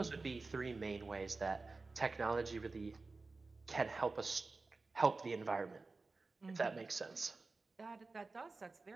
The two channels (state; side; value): quieter; left; 3.7 dB